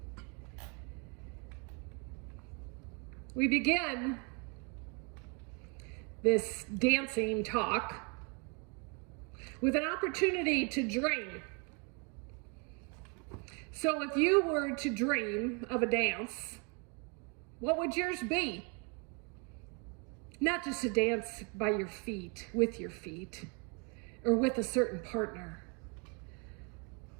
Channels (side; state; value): left; quieter; 34.2 dB